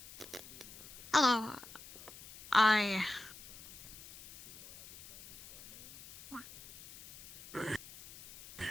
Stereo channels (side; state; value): left; noise; hiss, 17 dB below the sound